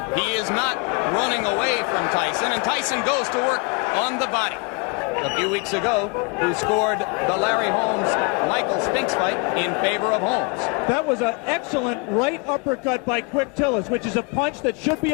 He is not running away from Tyson, and Tyson goes to work on the body. A few weeks ago, who scored the Larry Holmes-Michael Spinks fight in favor of Holmes. That was an excellent right uppercut by Quick Tillis, which is a punch that should be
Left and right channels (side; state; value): right; quieter; 29.5 dB